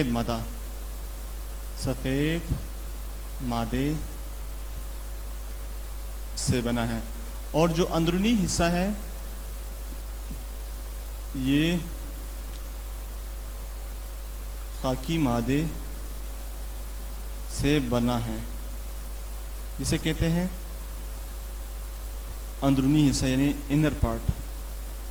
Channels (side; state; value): both; identical; correlation 1.00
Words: मादा, सफ़ेद मादे से बना है। और जो अंदरूनी हिस्सा है ये खाकी मादे से बना है, जिसे कहते हैं अंदरूनी हिस्सा यानी इनर पार्ट।